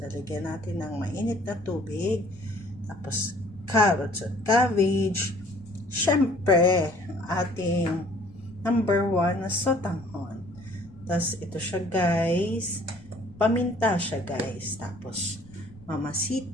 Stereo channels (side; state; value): left; noise; rumble, 22 dB below the sound